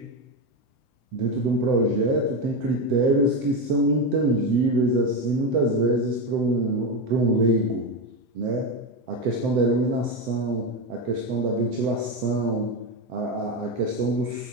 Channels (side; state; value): left; late; 7.8 ms